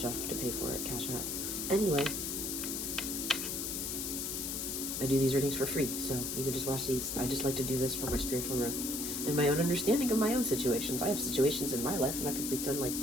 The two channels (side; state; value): left; noise; hiss, 2 dB below the sound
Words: to pay for it, Cash App. Anyway, I do these readings for free, so you can just watch these. I just like to do this for my spiritual growth and my own understanding of my own situations. I have situations in my life, and I can pretend like